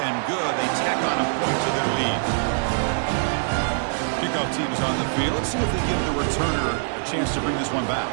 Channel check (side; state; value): left; silent; digital silence